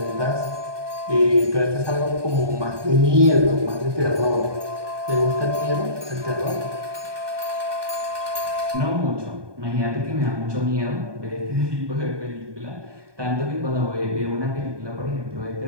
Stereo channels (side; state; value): left; late; 1.2 ms